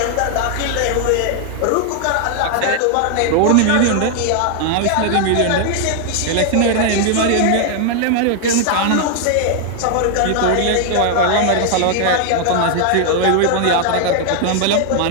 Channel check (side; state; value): both; different; correlation 0.00